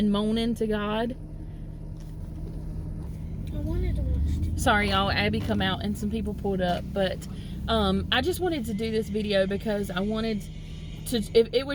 moaning to God. I wanted to watch TV. Sorry y'all, Abby come out and some people pulled up, but I just wanted to do this video because I wanted to, if it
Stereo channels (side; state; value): both; identical; correlation 1.00